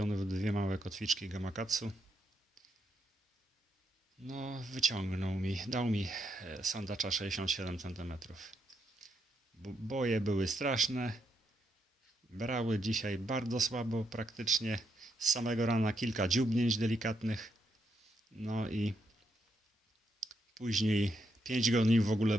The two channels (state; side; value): normal; both; correlation 0.79